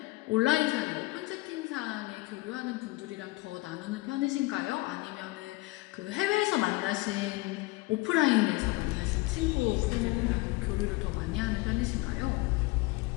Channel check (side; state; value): right; quieter; 21.9 dB